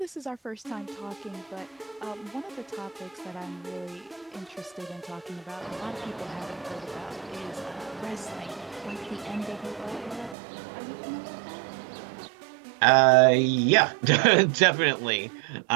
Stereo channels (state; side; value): drops out; left; at 10.4 s